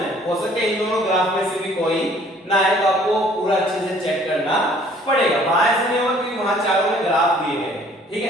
है, हो सकता है इन दोनों ग्राफ में से भी कोई ना आए, तो आपको पूरा अच्छे से चेक करना पड़ेगा, वहां ऐसे नहीं होगा क्योंकि वहां चारों में ग्राफ दिए गए हैं, ठीक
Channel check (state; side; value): normal; both; correlation 0.57